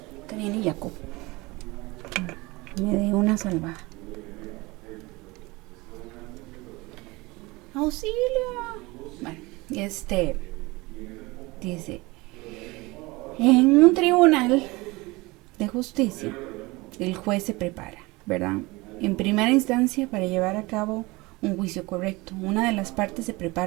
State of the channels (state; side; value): quieter; left; 23.0 dB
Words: te viene Jacob. Me dé una salvada. ¡Auxilio! Bueno, dice, en un tribunal de justicia, el juez se prepara, ¿verdad? En primera instancia, para llevar a cabo un juicio correcto. Una de las partes se